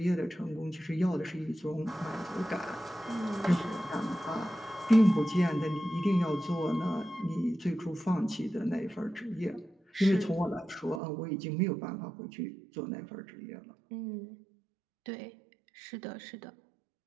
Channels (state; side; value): drops out; left; at 11.0 s